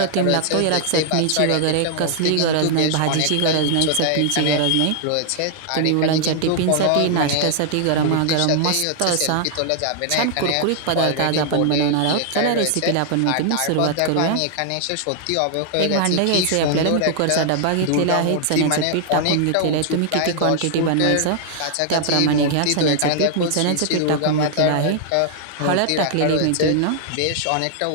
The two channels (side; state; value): both; different; correlation 0.00